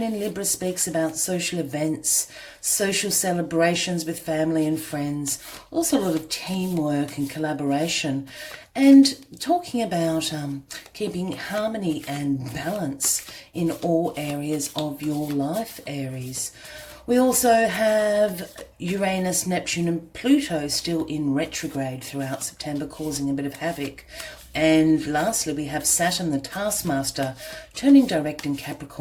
in Libra speaks about social events, social celebrations with family and friends, also a lot of teamwork and collaboration, and talking about keeping harmony and balance in all areas of your life, Aries. We also have Uranus, Neptune and Pluto still in retrograde throughout September, causing a bit of havoc. And lastly, we have Saturn, the taskmaster, turning direct in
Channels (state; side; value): identical; both; correlation 1.00